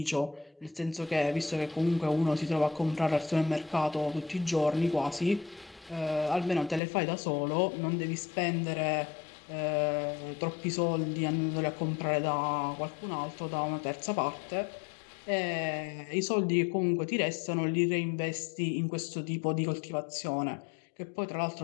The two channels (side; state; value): right; drops out; at 6.8 s